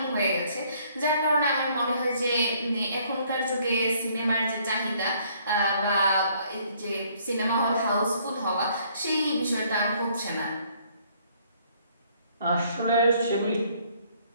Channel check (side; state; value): both; inverted; correlation -0.64